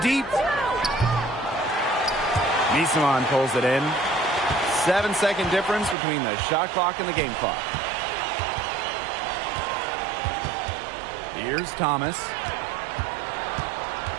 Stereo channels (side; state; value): left; drops out; at 6.0 s